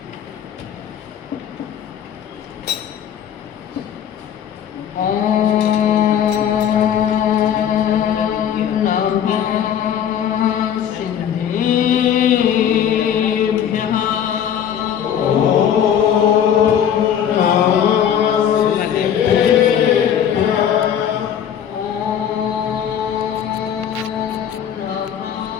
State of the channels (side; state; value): right; quieter; 9.1 dB